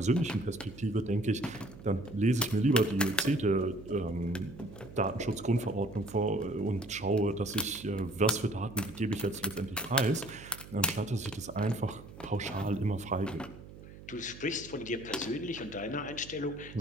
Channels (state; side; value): noise; right; hum, 16 dB below the sound